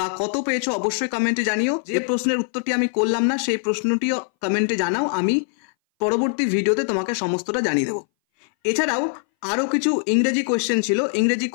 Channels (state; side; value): silent; right; 61 dB below the other